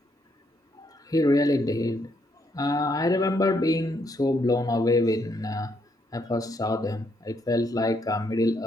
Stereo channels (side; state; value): both; normal; correlation 0.74